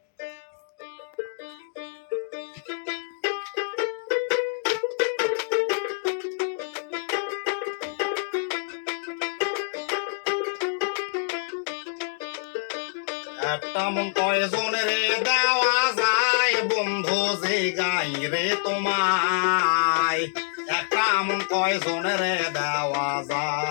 একটা মন কয়জনের দেওয়া যায় বন্ধু যে গাই রে তোমায়, একটা মন কয়জনের দেওয়া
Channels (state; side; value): silent; right; 61 dB below the other